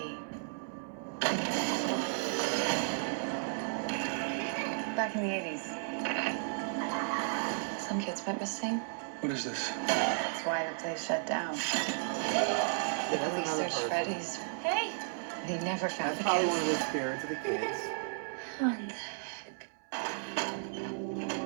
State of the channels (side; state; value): left; silent; 55 dB below the other